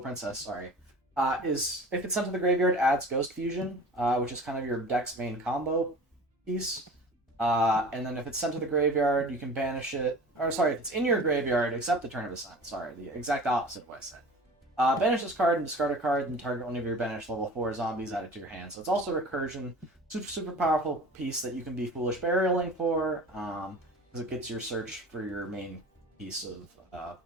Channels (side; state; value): both; normal; correlation 0.40